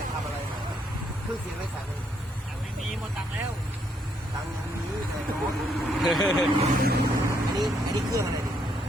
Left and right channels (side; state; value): both; normal; correlation 0.73